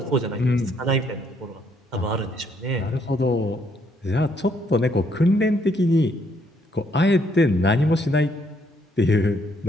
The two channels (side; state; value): both; normal; correlation 0.70